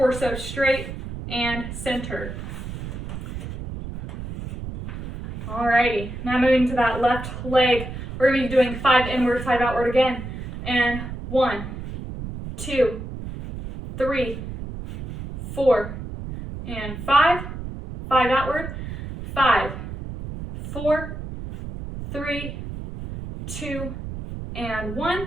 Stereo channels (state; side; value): noise; right; rumble, 8 dB below the sound